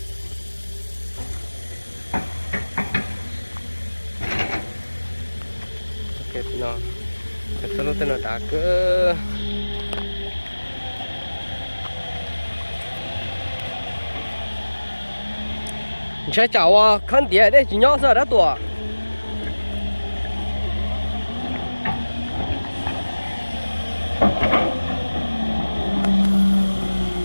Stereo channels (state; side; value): inverted; both; correlation -1.00